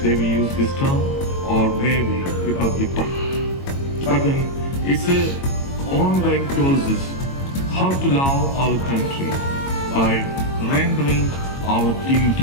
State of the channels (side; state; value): right; late; 22 ms